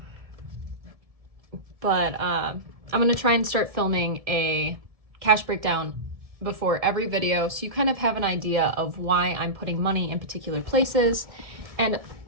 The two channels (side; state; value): left; late; 1.7 ms